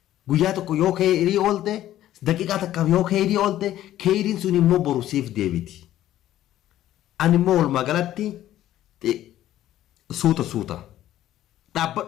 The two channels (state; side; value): quieter; right; 13.1 dB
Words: guyyaa tokko yoo khayrii oolte daqiiqaa takkaaf yoo khayrii oolte khayriin sun immoo boru siif deebiti ani immoo walumaa galatti suuta